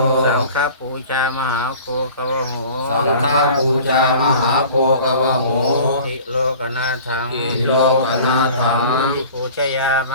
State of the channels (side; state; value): both; inverted; correlation -0.44